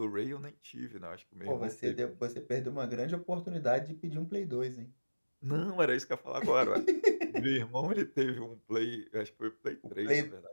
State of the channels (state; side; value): inverted; both; correlation -1.00